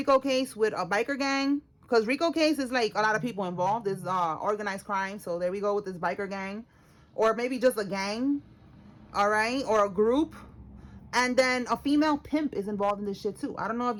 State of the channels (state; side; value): identical; both; correlation 1.00